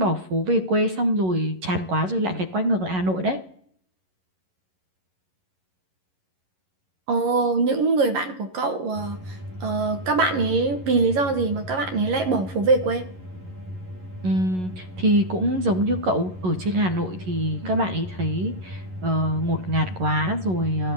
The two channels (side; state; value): left; late; 11 ms